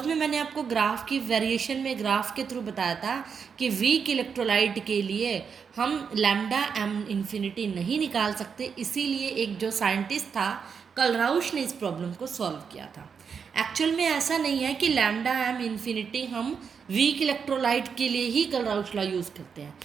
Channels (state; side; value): quieter; left; 6.3 dB